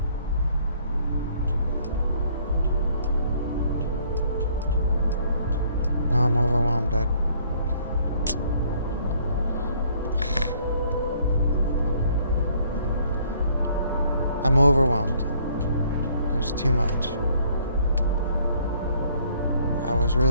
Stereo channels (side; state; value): both; inverted; correlation -0.62